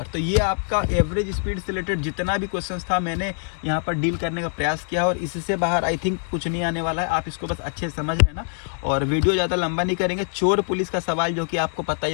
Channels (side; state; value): right; silent; 60 dB below the other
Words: तो ये आपका एवरेज स्पीड से रिलेटेड जितना भी क्वेश्चंस था मैंने यहाँ पर डील करने का प्रयास किया, और इससे बाहर आई थिंक कुछ नहीं आने वाला है। आप इसको बस अच्छे से समझ लेना और वीडियो ज़्यादा लंबा नहीं करेंगे। चोर पुलिस का सवाल जो कि आपको पता ही